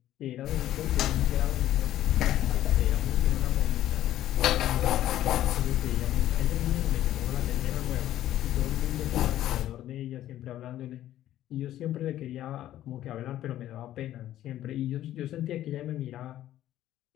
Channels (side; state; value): right; quieter; 13.0 dB